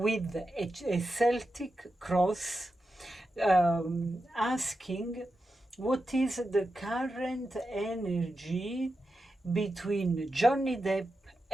a Celtic cross, asking what is the current energy between Johnny Depp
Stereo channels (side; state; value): both; normal; correlation 0.89